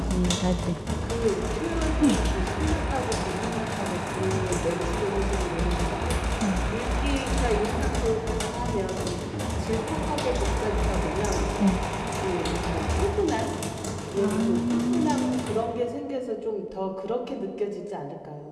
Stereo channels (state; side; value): identical; both; correlation 1.00